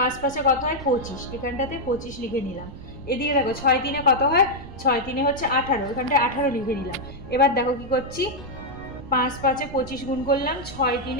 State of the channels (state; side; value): noise; right; rumble, 14 dB below the sound